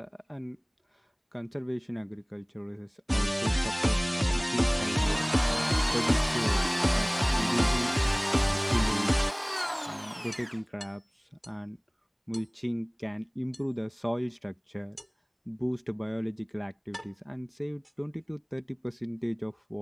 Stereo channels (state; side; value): identical; both; correlation 1.00